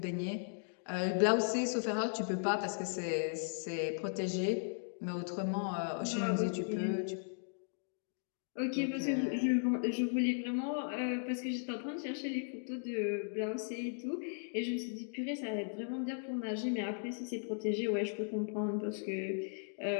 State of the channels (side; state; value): right; silent; digital silence